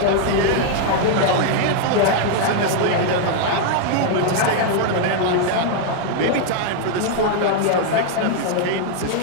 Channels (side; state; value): both; different; correlation 0.00